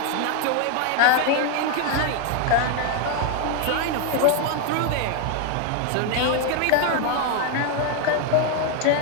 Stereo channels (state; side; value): different; both; correlation 0.00